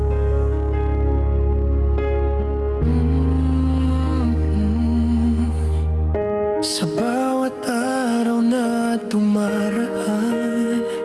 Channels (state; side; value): identical; both; correlation 1.00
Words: Sa bawat araw na dumaraan,